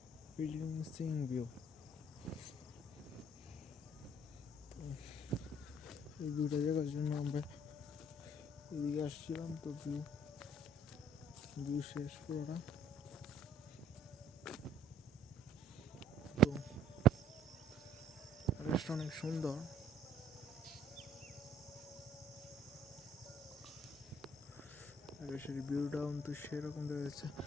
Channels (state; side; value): normal; both; correlation 0.59